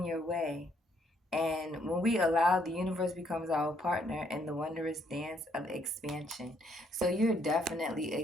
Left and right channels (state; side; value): normal; both; correlation 0.70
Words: your way. And when we allow, the universe becomes our partner in the wondrous dance of expansion. So you're definitely